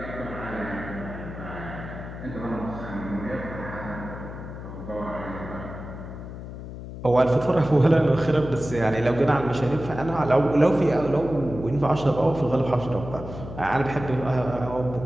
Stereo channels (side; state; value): left; noise; hum, 10 dB below the sound